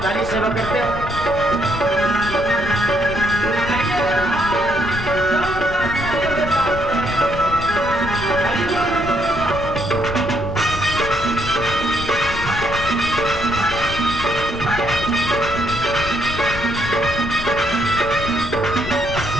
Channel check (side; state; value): left; noise; rumble, 8 dB below the sound